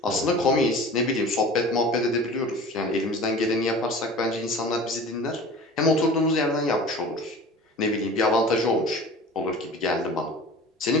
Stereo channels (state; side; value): normal; both; correlation 0.40